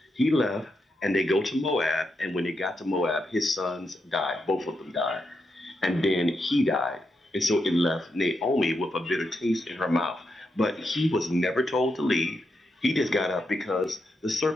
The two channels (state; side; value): normal; both; correlation 0.84